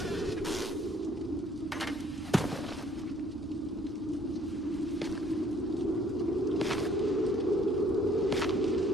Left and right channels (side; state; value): right; noise; hum, 22 dB below the sound